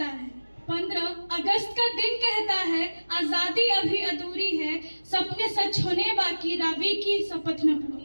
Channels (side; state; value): both; inverted; correlation -1.00